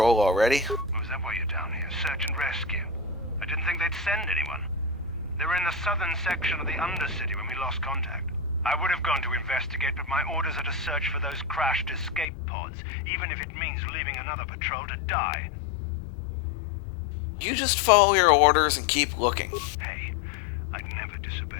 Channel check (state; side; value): drops out; right; at 12.2 s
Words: already? Oh, is that why you're down here? Search and rescue? I didn't think they'd send anyone. They were in the southern section of the Undercity when we lost contact. I would have gone to investigate, but my orders are to search for those crashed escape pods, even if it means leaving another patrol to die. You just follow your orders and keep looking. Hey, I'd never